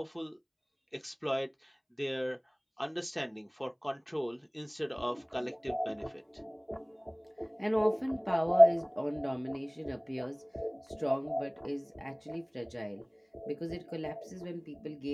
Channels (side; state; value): both; identical; correlation 1.00